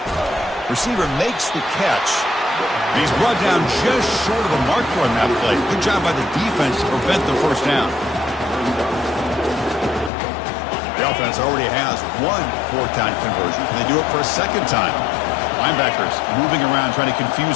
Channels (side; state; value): right; drops out; at 10.1 s